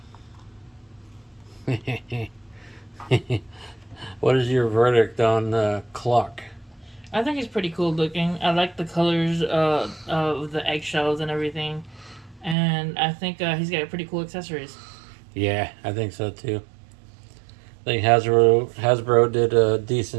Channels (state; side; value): drops out; left; at 12.6 s